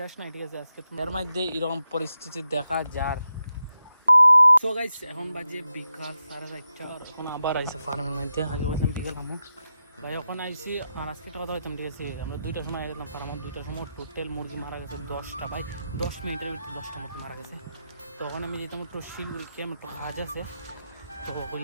নাই, ঠিক আছে। আজকে এর মধ্যে এরকম পরিস্থিতি দেখা যার। সো গাইস এখন বাজে বিকাল 4:30, আর এখন আবার আইসে ফার্মের মধ্যে। আগে বলছিলাম বিকেল আমুক ভাই, এখন আইসি। আর আজকে একটা কথা বলতাম, ঠিক আছে, আমরা 2টার সময় গেলাম ফার্মে। 2টার সময় টোটাল মুরগি মারা গেছে 10টা ভাই। 10 মিনিটের ভিতরে 10টা মুরগি মারা গেছে। তখন আমি যেতাম একটু শিলগুড়ি ক্যাম্প, একটু কাজ আছে, তো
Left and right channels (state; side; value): inverted; both; correlation -0.88